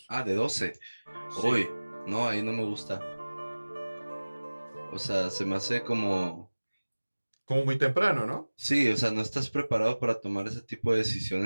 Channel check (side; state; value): both; inverted; correlation -1.00